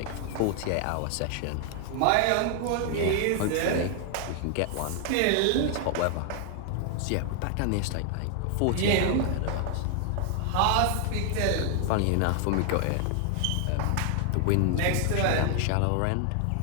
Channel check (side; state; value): both; different; correlation 0.00